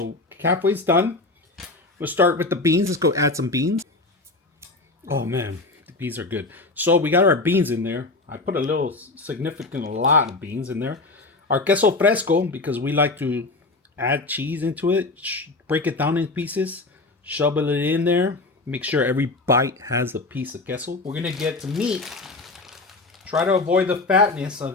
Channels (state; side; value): quieter; right; 3.3 dB